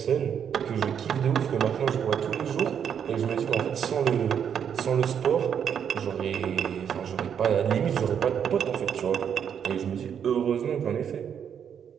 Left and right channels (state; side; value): quieter; left; 8.1 dB